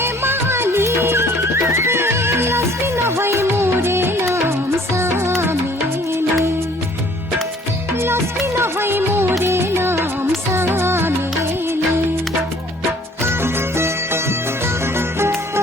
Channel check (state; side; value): normal; both; correlation 0.56